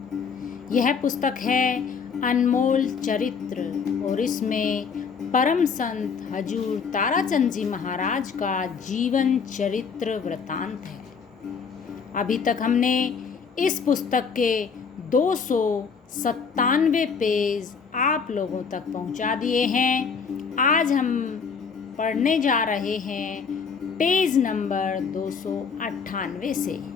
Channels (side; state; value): right; quieter; 5.8 dB